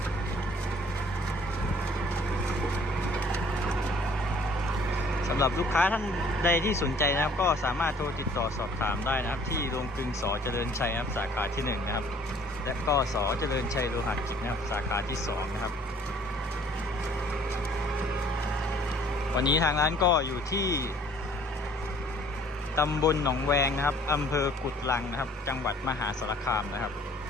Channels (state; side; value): normal; both; correlation 0.56